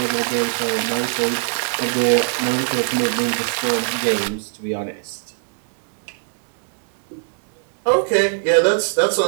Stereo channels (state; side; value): silent; left; digital silence